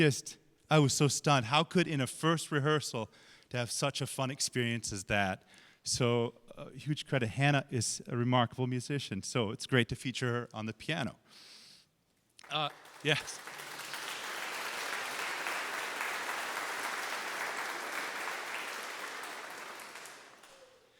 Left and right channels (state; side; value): identical; both; correlation 1.00